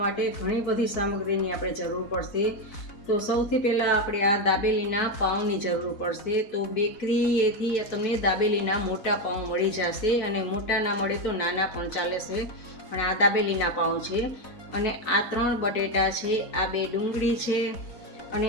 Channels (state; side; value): late; right; 4.6 ms